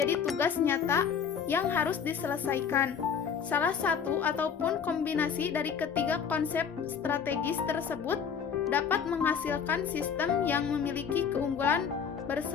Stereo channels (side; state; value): right; quieter; 7.0 dB